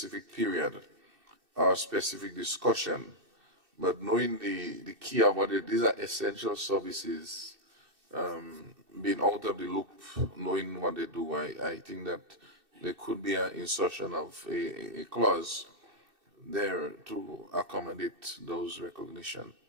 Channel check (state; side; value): late; left; 2.6 ms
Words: period or specific discussion. But knowing the key about it, these are essential services, being out of the loop, knowing what they do, I think that there could be an insertion of a clause there to accommodate those recognition.